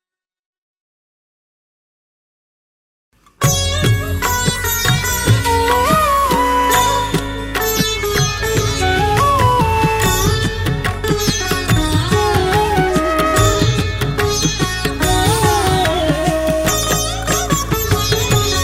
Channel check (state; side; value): identical; both; correlation 1.00